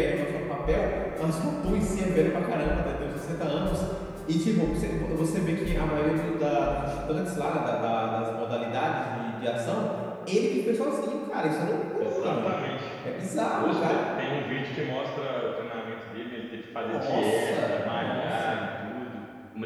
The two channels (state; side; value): identical; both; correlation 1.00